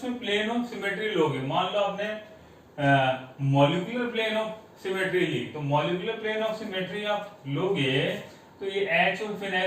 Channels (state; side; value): identical; both; correlation 1.00